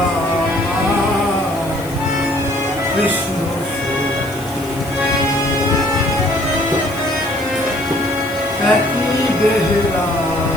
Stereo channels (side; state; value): left; noise; hiss, 19 dB below the sound